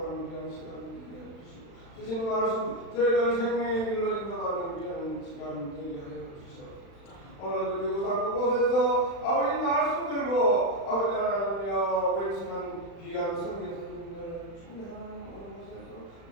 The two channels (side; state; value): right; late; 36 ms